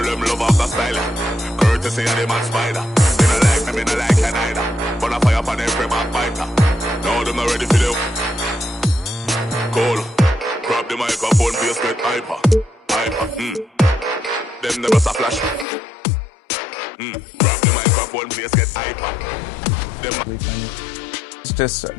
them love off the style. Courtesy of the man spider. Me no like me, me no like you neither. But I fire for them free backbiter. Now them not ready for them. Call. Grab the microphone, play a straight hyper. Them never a flash. Grab the microphone, play a straight hyper. It's just a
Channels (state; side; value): drops out; right; at 15.7 s